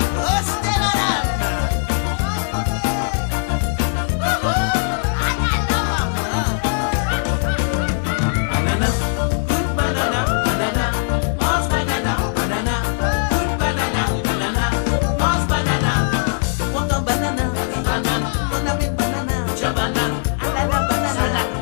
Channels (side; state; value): right; silent; 56 dB below the other